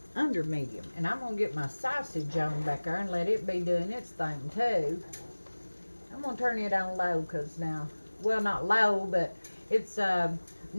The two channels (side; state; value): both; inverted; correlation -1.00